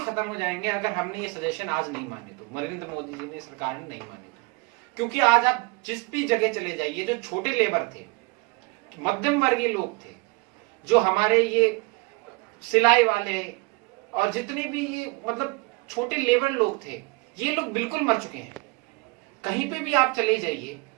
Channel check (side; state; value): left; quieter; 26.6 dB